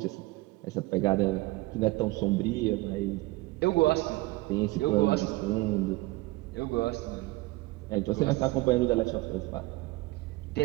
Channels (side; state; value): left; quieter; 20.8 dB